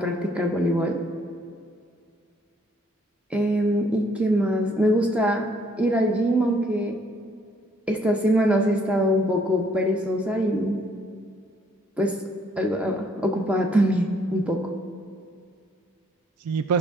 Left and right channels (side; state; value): both; normal; correlation 0.66